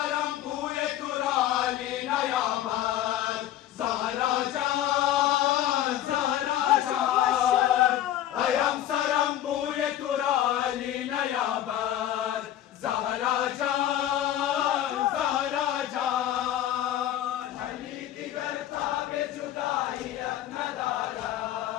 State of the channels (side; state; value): right; quieter; 12.4 dB